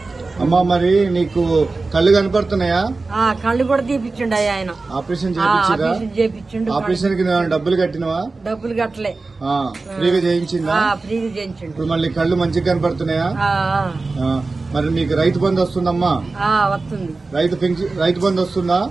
అమ్మా మరి నీకు కళ్ళు కనపడుతున్నాయా? కళ్ళు కూడా తీపిచ్చిండు అయ్యా ఆయన. ఆపరేషన్ చేపించిండు. ఆపరేషన్ కి డబ్బులు కట్టినవా? డబ్బులు కట్టలే, ఫ్రీగా చేయించిందా? ఫ్రీగా చేయించిండు. ఇప్పుడు మళ్ళీ కళ్ళు మంచిగా కనపడుతున్నాయా? మరి నీకు రైతు బంధు వస్తుందమ్మా? వస్తుంది. రైతు బంధు వస్తుందా?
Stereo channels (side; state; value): left; quieter; 3.7 dB